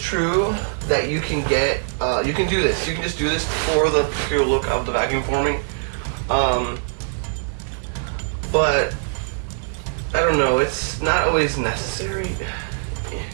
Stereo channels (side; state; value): left; silent; 55 dB below the other